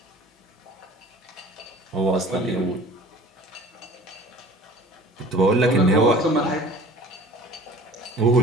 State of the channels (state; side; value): normal; both; correlation 0.46